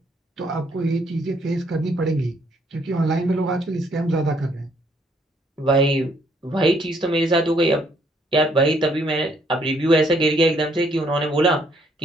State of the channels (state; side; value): normal; both; correlation 0.68